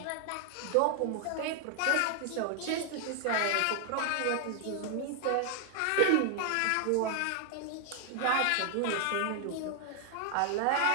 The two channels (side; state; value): both; different; correlation 0.00